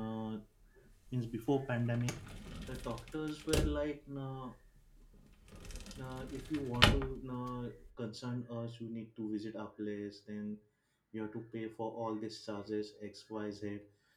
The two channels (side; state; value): both; identical; correlation 1.00